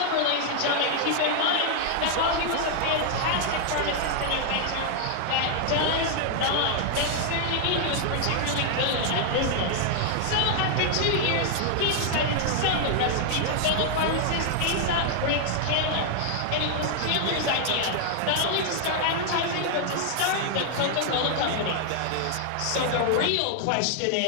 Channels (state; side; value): different; both; correlation 0.00